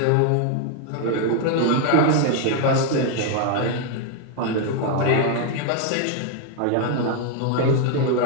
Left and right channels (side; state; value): both; different; correlation 0.01